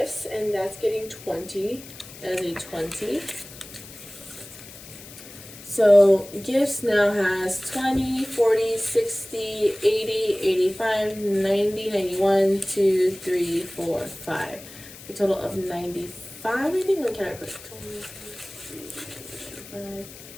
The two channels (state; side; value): noise; left; hiss, 17 dB below the sound